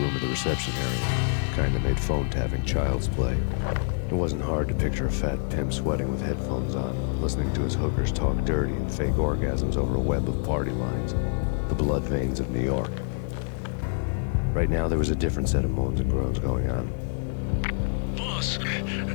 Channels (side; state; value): right; silent; digital silence